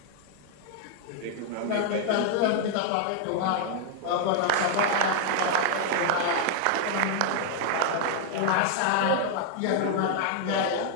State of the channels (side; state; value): both; different; correlation 0.00